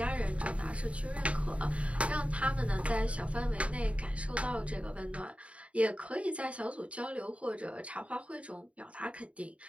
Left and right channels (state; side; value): late; left; 0.064 ms